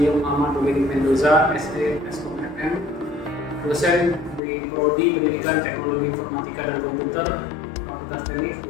Muhammad Dominic Mendoza, SD Eskom FM, dosen di Prodi Pendidikan Teknologi Informatika dan Komputer, Fakultas Teknik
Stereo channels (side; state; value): right; drops out; at 4.4 s